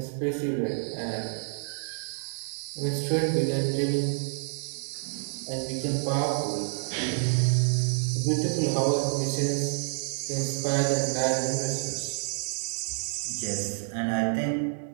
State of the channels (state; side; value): silent; left; 59 dB below the other